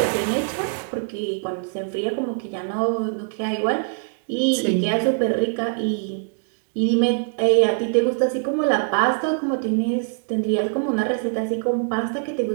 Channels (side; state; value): left; silent; 63 dB below the other